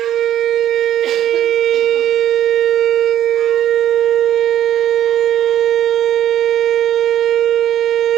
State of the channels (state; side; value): quieter; left; 11.4 dB